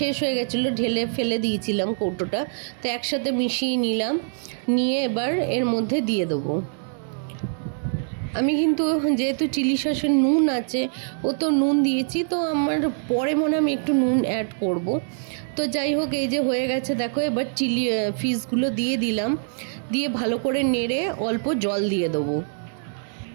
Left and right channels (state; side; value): silent; left; digital silence